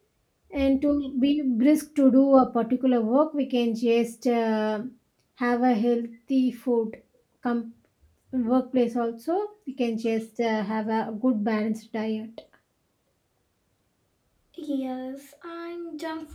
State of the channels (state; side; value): identical; both; correlation 1.00